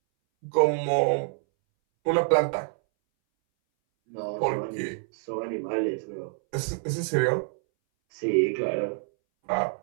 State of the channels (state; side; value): silent; left; 60 dB below the other